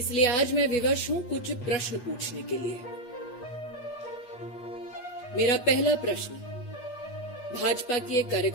आज मैं विवश हूं कुछ प्रश्न पूछने के लिए। मेरा पहला प्रश्न भाजपा की एक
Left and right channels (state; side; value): late; right; 8.3 ms